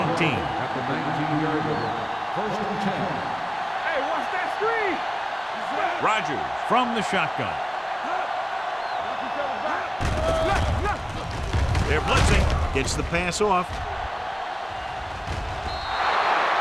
At the 19-yard line. First and 10. Hey, watch that screen. Rogers from the shotgun. They're blitzing. Gets the pass off.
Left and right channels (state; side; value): identical; both; correlation 1.00